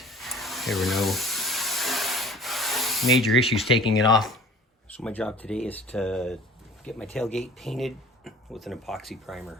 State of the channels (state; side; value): normal; both; correlation 0.47